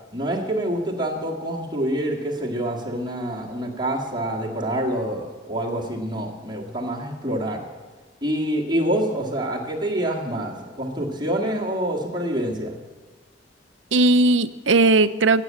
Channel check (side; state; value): both; normal; correlation 0.28